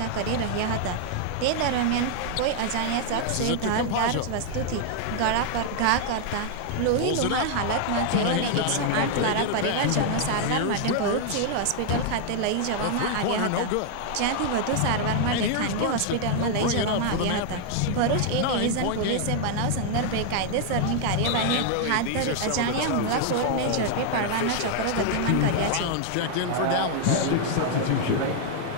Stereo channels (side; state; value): both; different; correlation 0.00